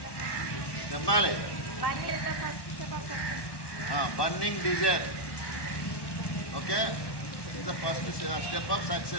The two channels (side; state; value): right; late; 1.1 ms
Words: చెప్పాలి. Burning desire okay is the first step of